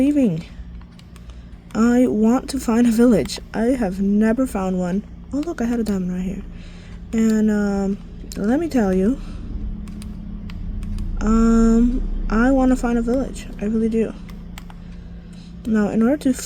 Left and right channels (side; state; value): both; identical; correlation 1.00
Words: I want to find a village. I have never found one. Oh look, I had a diamond right here. And let me tell you, I want to find a village. I really do. Now, in order to